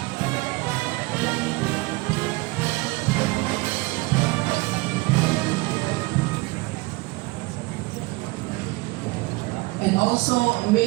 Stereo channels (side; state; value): left; quieter; 23.4 dB